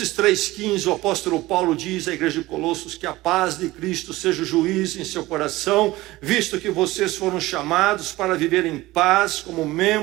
3,15, o apóstolo Paulo diz à igreja de Colossos que a paz de Cristo seja o juiz em seu coração, visto que vocês foram chamados para viver em paz como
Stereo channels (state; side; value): quieter; left; 18.6 dB